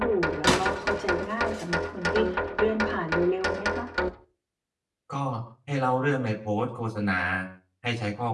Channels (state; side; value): identical; both; correlation 1.00